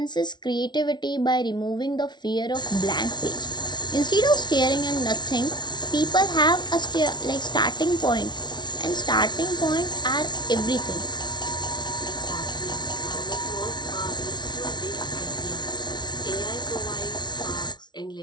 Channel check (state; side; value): late; right; 0.20 ms